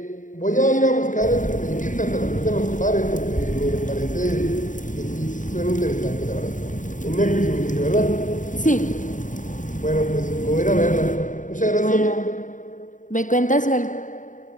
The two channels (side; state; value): right; late; 0.37 ms